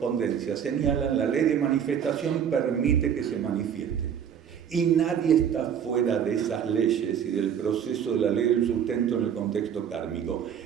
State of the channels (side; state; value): left; quieter; 8.4 dB